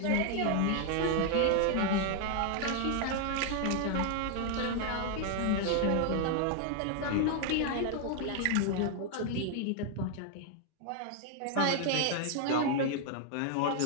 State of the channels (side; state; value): both; different; correlation 0.00